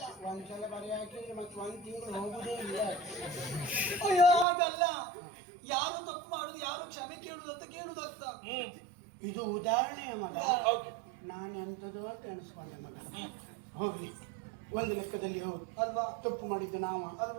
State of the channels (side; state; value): left; drops out; at 4.5 s